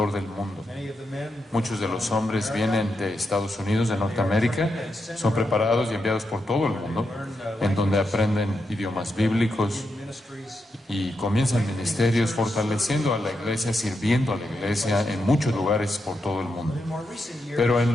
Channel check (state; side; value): normal; both; correlation 0.85